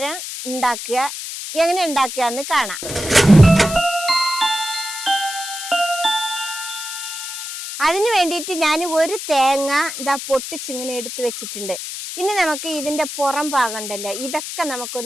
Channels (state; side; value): noise; left; hiss, 7 dB below the sound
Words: ഉണ്ടാക്കുക. എങ്ങനെ ഉണ്ടാക്കുക എന്ന് കാണാം. അതിന് വേണ്ടിയിട്ട് ഞാൻ ഒരു തേങ്ങ ഇതാ പൊട്ടിച്ചിങ്ങനെ എടുത്ത് വെച്ചിട്ടുണ്ട്. ഇനി നമുക്ക് ഇതിന്റെ പുറം ഭാഗം ഉണ്ടല്ലോ, ഇതൊക്കെ